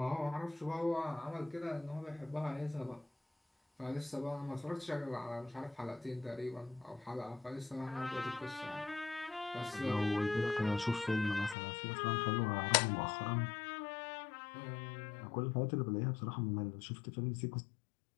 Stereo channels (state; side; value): drops out; right; at 11.6 s